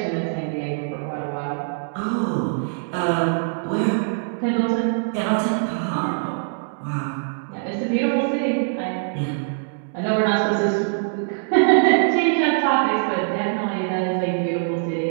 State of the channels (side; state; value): left; silent; digital silence